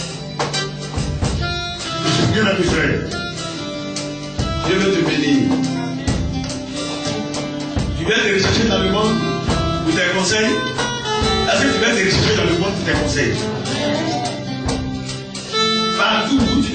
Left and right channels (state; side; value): identical; both; correlation 1.00